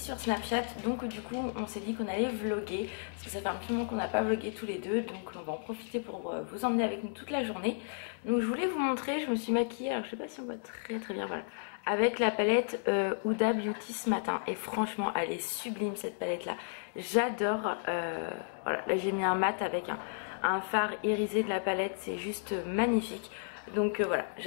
Snapchat, donc du coup on s'est dit qu'on allait vlogger parce que ça fait un petit moment qu'on n'a pas vlogué tous les deux, donc on va en profiter pour vous emmener avec nous toute la journée. Donc je voulais vous montrer, je me suis maquillée, alors je sais pas si on voit très bien, voilà, avec la palette Huda Beauty ce matin, et franchement elle est sublime cette palette là, j'adore. Voilà, là j'ai mis un mat avec un fard irisé de la palette, c'est juste magnifique. Donc voilà,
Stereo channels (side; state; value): right; silent; digital silence